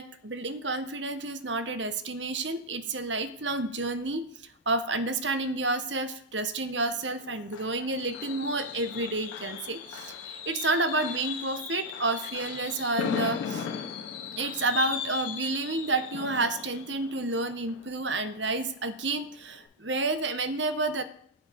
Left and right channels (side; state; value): both; normal; correlation -0.04